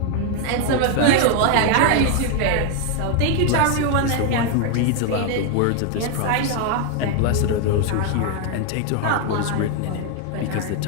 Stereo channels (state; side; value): different; both; correlation 0.01